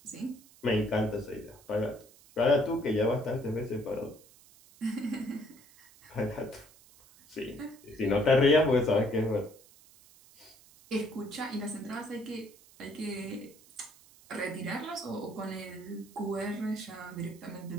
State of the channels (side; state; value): right; noise; hiss, 25 dB below the sound